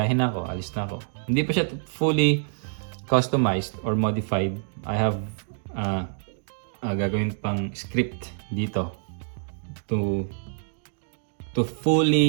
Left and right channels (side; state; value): left; silent; digital silence